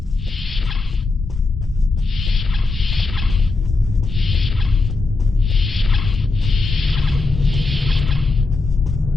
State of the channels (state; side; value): quieter; right; 3.6 dB